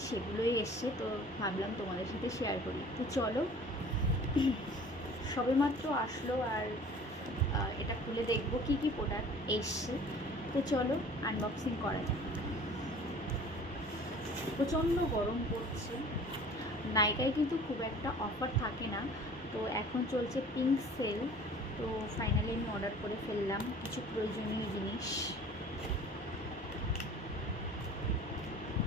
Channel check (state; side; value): normal; both; correlation 0.47